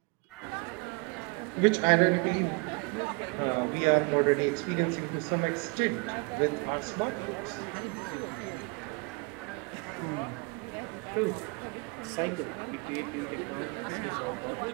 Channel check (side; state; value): left; quieter; 30.0 dB